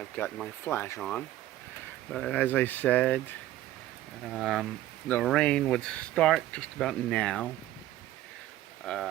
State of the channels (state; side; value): quieter; left; 14.3 dB